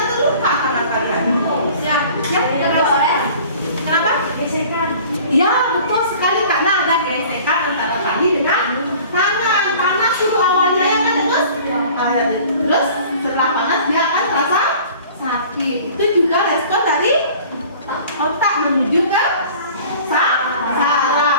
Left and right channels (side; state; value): both; inverted; correlation -0.47